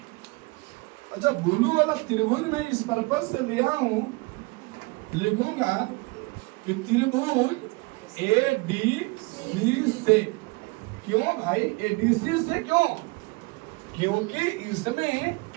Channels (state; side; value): quieter; left; 25.9 dB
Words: अच्छा, ब्लू वाला त्रिभुज में इस पर्पज से लिया हूं, लिखूंगा कि त्रिभुज ए डी सी से। क्यों भाई ए डी सी से? क्यों? क्योंकि इसमें